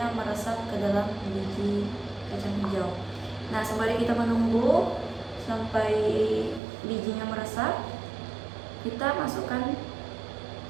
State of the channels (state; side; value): drops out; left; at 6.6 s